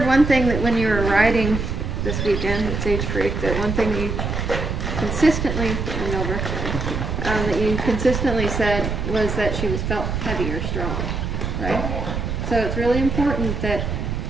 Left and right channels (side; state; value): right; noise; rumble, 2 dB below the sound